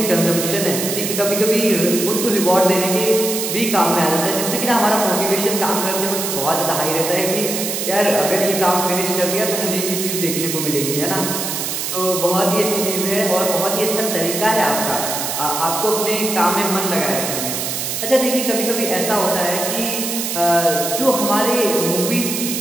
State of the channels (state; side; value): noise; right; hiss, 3 dB below the sound